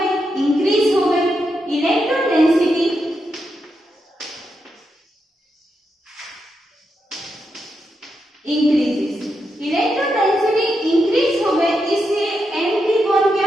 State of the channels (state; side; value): normal; both; correlation 0.84